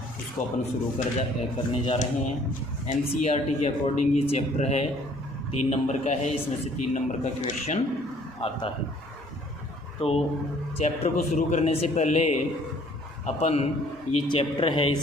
उसको अपन शुरू करने जा रहे हैं। NCERT के अकॉर्डिंग ये चैप्टर है 3 नंबर का है, इसमें से 3 नंबर का क्वेश्चन आता है। तो चैप्टर को शुरू करने से पहले अपन ये चैप्टर है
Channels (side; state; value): both; normal; correlation 0.58